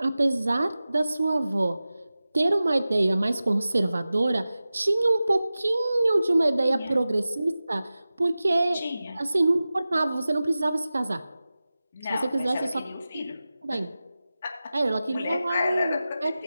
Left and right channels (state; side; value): inverted; both; correlation -0.95